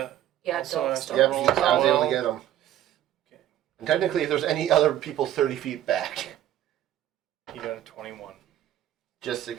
Also Dolph has to Yep, roll I was able well. to get him. Okay. And technically, if there's any other people 30 feet back, He got a 21. just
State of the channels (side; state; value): left; quieter; 11.9 dB